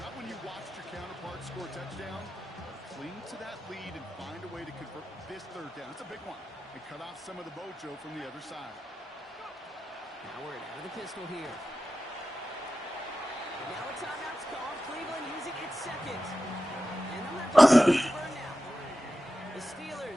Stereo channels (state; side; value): normal; both; correlation 0.93